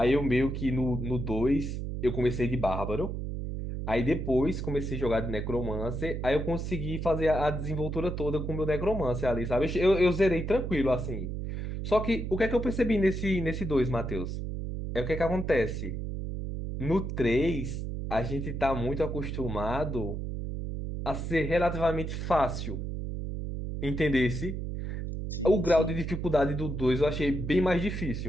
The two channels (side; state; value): right; noise; hum, 4 dB below the sound